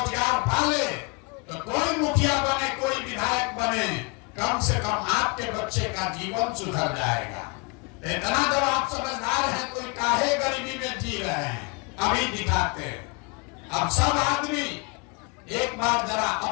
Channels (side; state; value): right; quieter; 30.8 dB